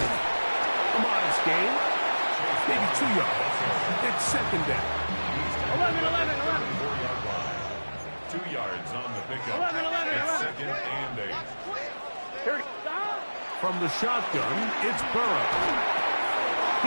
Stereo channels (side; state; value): both; inverted; correlation -1.00